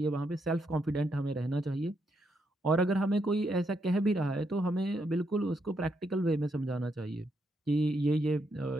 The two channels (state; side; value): normal; both; correlation 0.79